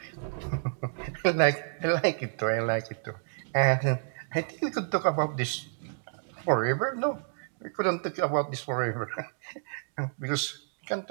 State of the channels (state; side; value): silent; left; digital silence